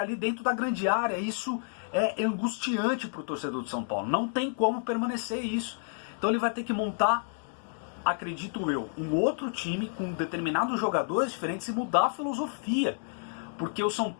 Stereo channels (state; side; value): silent; right; digital silence